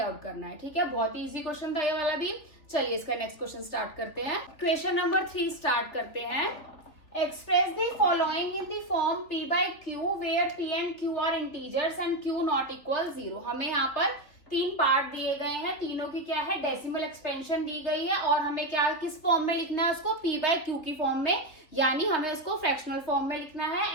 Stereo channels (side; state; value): right; late; 3.7 ms